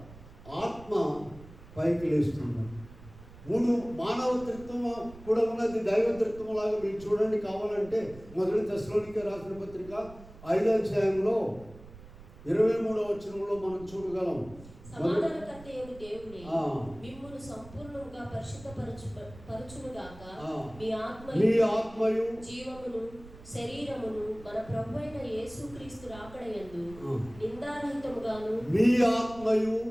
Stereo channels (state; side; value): noise; right; rumble, 19 dB below the sound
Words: ఆత్మ పైకి లేస్తుంది. 3 మానవత్రిత్వం కూడా ఉన్నది, దైవత్రిత్వం లాగా. మీరు చూడండి కావాలంటే మొదటి తెస్సలోనికే రాసిన పత్రిక 5వ అధ్యాయంలో 23వ వచనంలో మనం చూడగలం. మీ ఆత్మయు జీవమును శరీరమును మన ప్రభువైన యేసుక్రీస్తు రాకడయందు నిందారహితముగాను, మీ ఆత్మయు